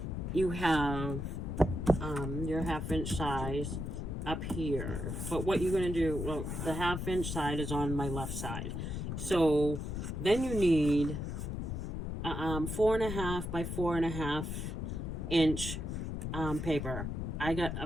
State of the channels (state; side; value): noise; left; rumble, 4 dB below the sound